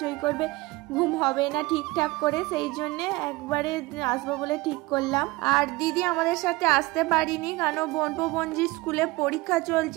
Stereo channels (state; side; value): quieter; left; 21.6 dB